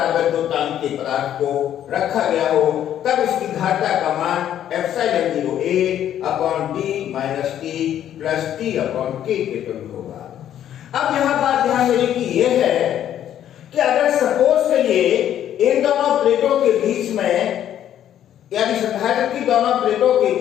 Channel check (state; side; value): quieter; right; 10.8 dB